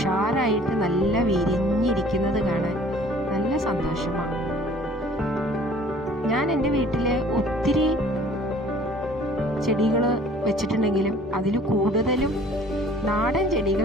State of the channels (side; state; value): both; normal; correlation 0.52